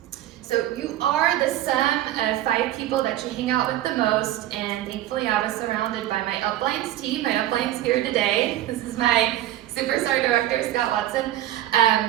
So you are the sum of 5 people that you hang out with the most, and thankfully I was surrounded by my uplines team. My upline's here today. This is my superstar director, Scott Watson.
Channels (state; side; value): quieter; left; 13.8 dB